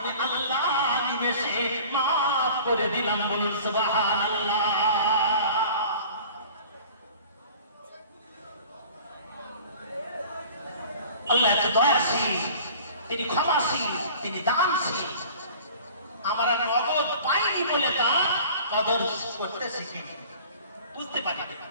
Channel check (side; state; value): both; inverted; correlation -0.45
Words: আল্লাহ নিমেষে মাফ করে দিলাম। বলুন সুবহানাল্লাহ। আল্লাহ এত দয়াশীল, তিনি ক্ষমাশীল, তিনি দানশীল। আমরা নগদ পাইনি বলে তার কদর করতে শিখিনি, বুঝতে পারি।